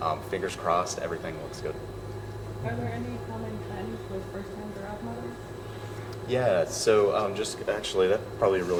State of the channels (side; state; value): both; identical; correlation 1.00